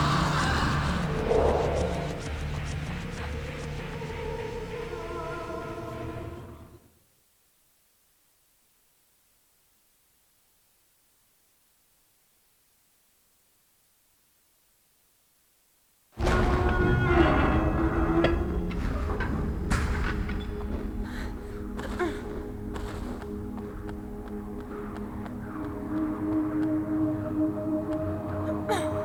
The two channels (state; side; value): identical; both; correlation 1.00